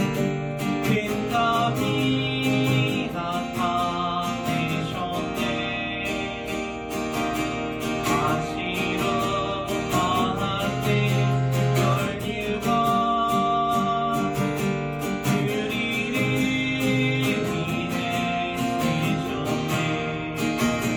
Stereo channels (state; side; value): identical; both; correlation 1.00